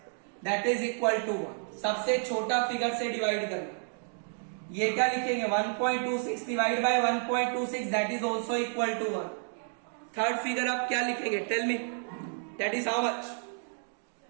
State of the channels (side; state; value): left; silent; 57 dB below the other